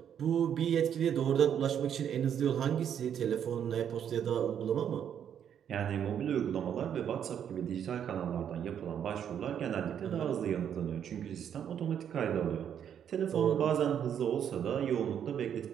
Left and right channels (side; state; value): left; quieter; 8.9 dB